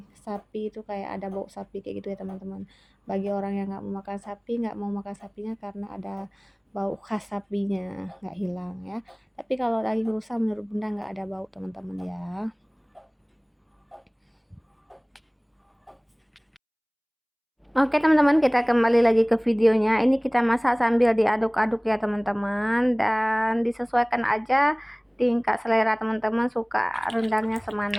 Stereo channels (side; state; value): both; identical; correlation 1.00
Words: sapi itu kayak ada bau sapi kayak gitu ya teman-teman. Bagi orang yang nggak mau makan sapi, nggak mau makan sapinya karena ada bau khas sapinya nggak hilang ya. Tapi kalau daging rusa menurut Bunda nggak ada bau teman-teman ya. Oke teman-teman, kita kembali lagi ke videonya. Ini kita masak sambil diaduk-aduk ya teman-teman, dan disesuaikan aja tingkat selera teman-teman suka rendangnya